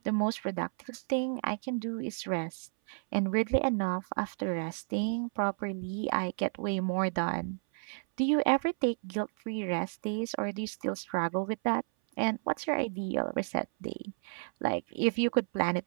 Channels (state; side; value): silent; left; 57 dB below the other